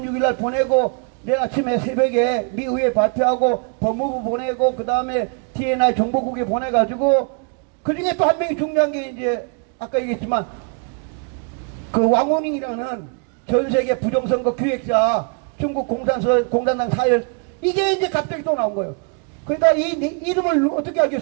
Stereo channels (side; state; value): left; quieter; 37.8 dB